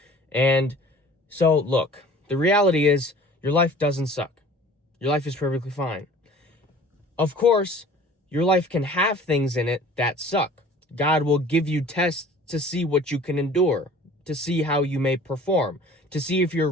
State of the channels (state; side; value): normal; both; correlation 0.47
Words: And so, look, the reality is your life doesn't suck. Your life is perfectly fine. Of course, your life can have things in it that suck. God will give you tests to see what you can endure, to see how you may perform, to see if you're